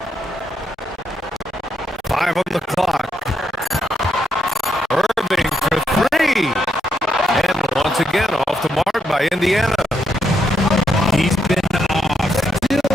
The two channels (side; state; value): both; normal; correlation 0.79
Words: 5 on the clock. Irving for three. And once again, off the mark by Indiana. He's been off. Still